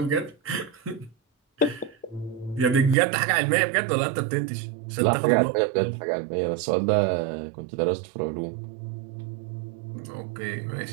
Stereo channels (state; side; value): drops out; left; at 3.0 s